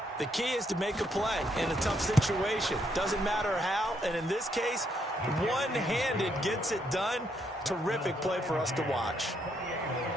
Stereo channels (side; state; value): both; normal; correlation 0.75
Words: The key is to make a play in a tough situation. Doesn't matter how, and in this case, one-handed gets it done. Terrific play for us to watch.